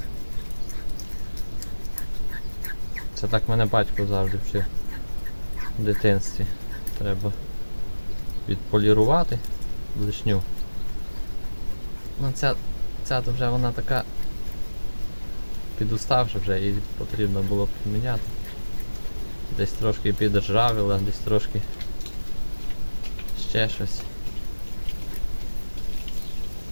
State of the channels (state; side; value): inverted; both; correlation -1.00